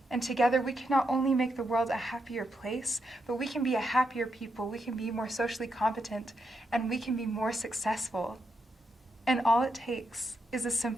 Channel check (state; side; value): normal; both; correlation 0.82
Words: And together we can not only make the world a happier place, but we can be a happier people, we can be more socially competent, and we can be more successful. And all it takes is a